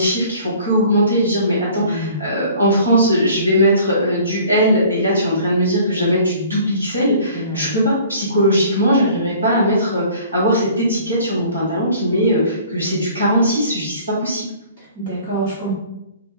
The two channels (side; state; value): both; inverted; correlation -0.51